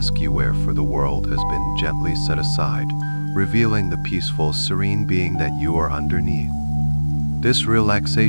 you wear for the world has been gently set aside, revealing the peaceful, serene being that you are underneath. This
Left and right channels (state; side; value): inverted; both; correlation -1.00